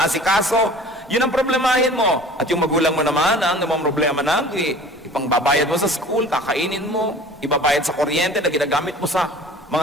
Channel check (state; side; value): normal; both; correlation 0.44